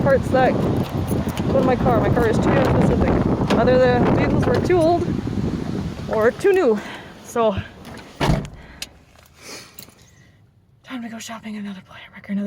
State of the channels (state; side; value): identical; both; correlation 1.00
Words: parts that go to my car. My car is too specific. Either the vehicles were too old or too new. So, time to go shopping another wrecker